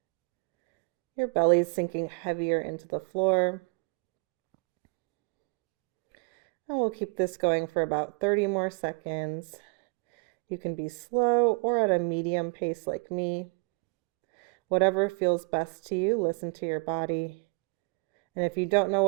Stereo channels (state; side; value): quieter; left; 33.0 dB